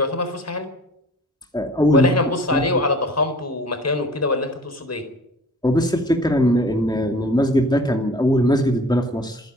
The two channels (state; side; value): normal; both; correlation 0.48